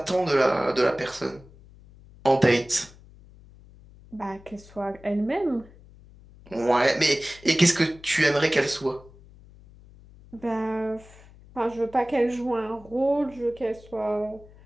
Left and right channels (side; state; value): left; noise; hum, 23 dB below the sound